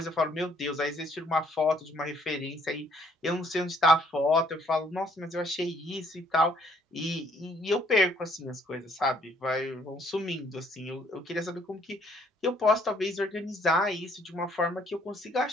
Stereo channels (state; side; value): normal; both; correlation 0.64